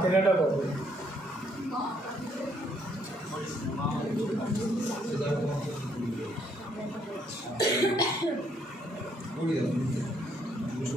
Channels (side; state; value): both; normal; correlation 0.70